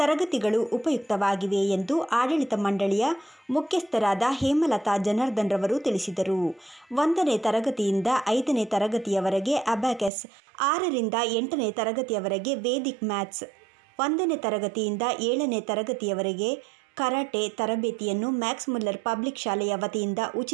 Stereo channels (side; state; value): left; drops out; at 10.1 s